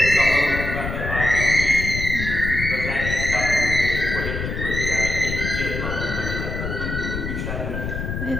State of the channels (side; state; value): left; noise; rumble, 4 dB below the sound